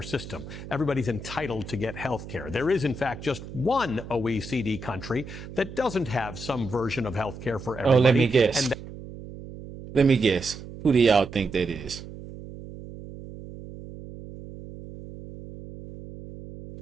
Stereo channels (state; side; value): noise; right; hum, 13 dB below the sound